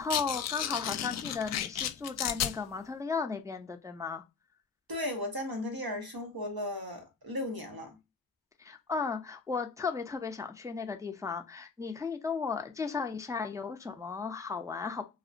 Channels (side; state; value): right; quieter; 4.8 dB